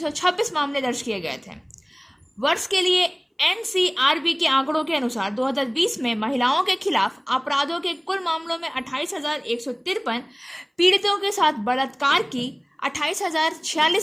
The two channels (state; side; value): identical; both; correlation 1.00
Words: मामले दर्ज किए गए थे। वर्ष के लिए एनसीआरबी के आंकड़ों के अनुसार 2020 में महिलाओं के खिलाफ अपराधों के कुल मामलों में 28,153, पीड़ितों के साथ बलात्कार की